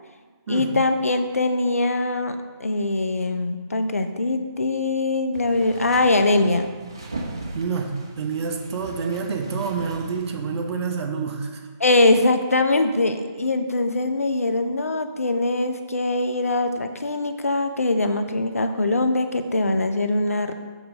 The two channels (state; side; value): inverted; both; correlation -0.68